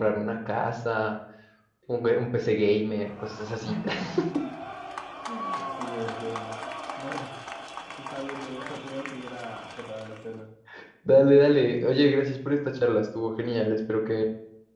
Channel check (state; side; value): identical; both; correlation 1.00